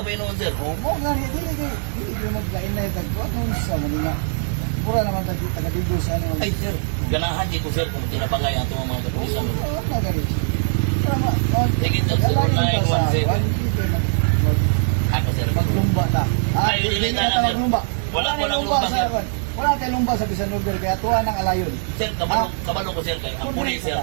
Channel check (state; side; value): silent; left; 65 dB below the other